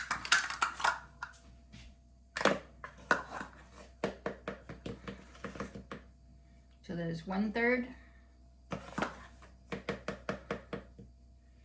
So that is 1/3.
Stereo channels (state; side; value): identical; both; correlation 1.00